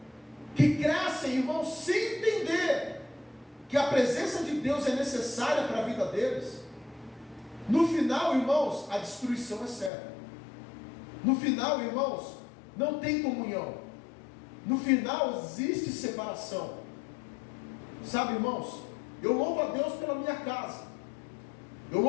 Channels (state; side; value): drops out; right; at 9.9 s